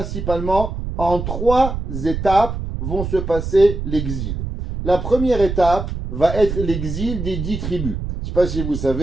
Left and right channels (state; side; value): noise; right; rumble, 5 dB below the sound